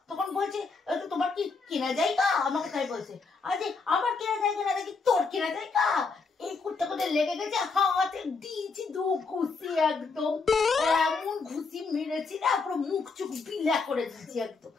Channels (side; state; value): right; quieter; 4.5 dB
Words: তখন বলছে তোমার কি কেনা জায়গা? আমাকে তাই বলছে। আরে আমার কেনা জায়গা না, দেখি তোর কেনা জায়গা। এই কুত্তা কোথায় লেগে গেছে, হাতে দিয়েছি দু ঘুষি, একদম এমন ঘুষি মেরেছি না, পুরো মুখ চুখ বিলা করে দিচ্ছি একদম।